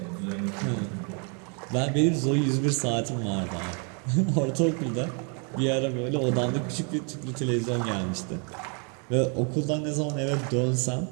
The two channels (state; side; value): quieter; left; 37.0 dB